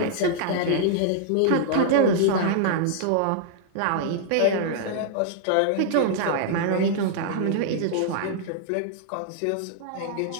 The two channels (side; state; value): both; different; correlation -0.01